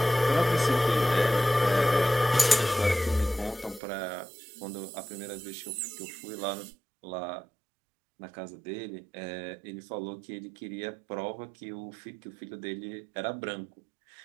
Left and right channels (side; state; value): left; drops out; at 3.8 s